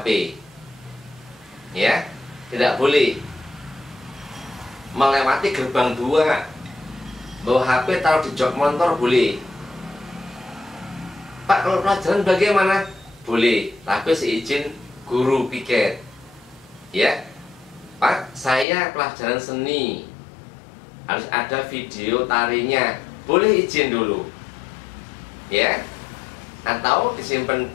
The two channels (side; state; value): right; drops out; at 18.7 s